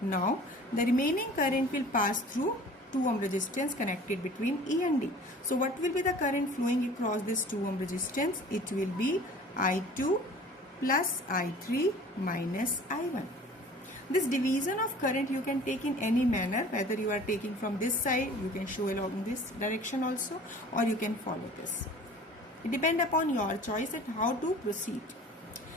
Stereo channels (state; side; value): normal; both; correlation 0.46